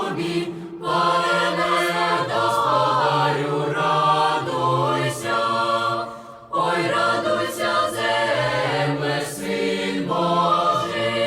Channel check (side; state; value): both; identical; correlation 1.00